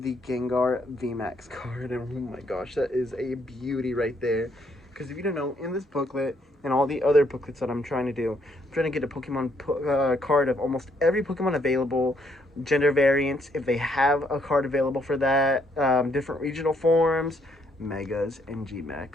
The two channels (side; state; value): both; normal; correlation 0.71